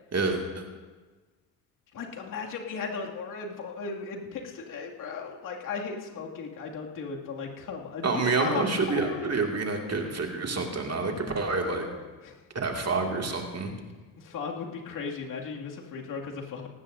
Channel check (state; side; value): normal; both; correlation 0.00